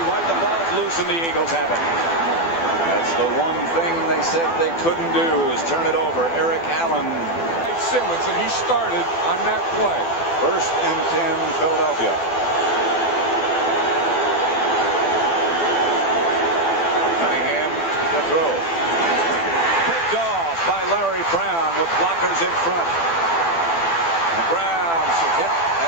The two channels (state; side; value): late; right; 12 ms